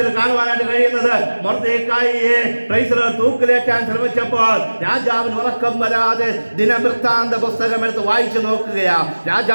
കാണുവാനായിട്ട് കഴിയുന്നത്, മൊർദെഖായിയെ പ്രൈസ് ദി ലോർഡ് തൂക്കിലേറ്റാൻ ശ്രമിച്ചപ്പോൾ രാജാവിന് ഉറക്കം വരാതെ ദിനവൃത്താന്ത പുസ്തകം എടുത്ത് വായിച്ചു നോക്കുകയാ.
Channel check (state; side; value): inverted; both; correlation -1.00